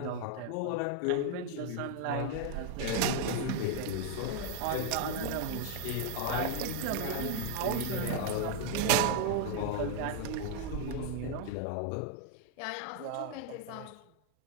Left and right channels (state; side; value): different; both; correlation 0.00